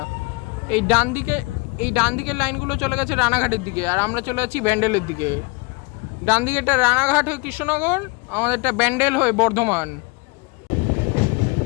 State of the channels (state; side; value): quieter; right; 28.5 dB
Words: এই ডান দিকের লাইনগুলো চলে গেছে রানাঘাটের দিকে, আর আমরা চলে যাচ্ছি ব্যান্ডেলের দিকে। ডান দিকেরটা রানাঘাট হয়ে কৃষ্ণনগর, আমাদেরটা ব্যান্ডেল হয়ে বর্ধমান।